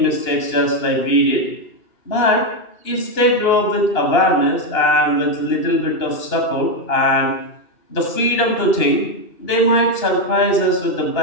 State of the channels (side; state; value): right; late; 2.8 ms